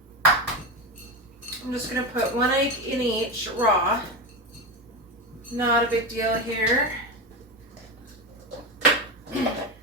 I'm just going to put 1 egg in each raw. Not a big deal here.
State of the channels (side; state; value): both; normal; correlation 0.17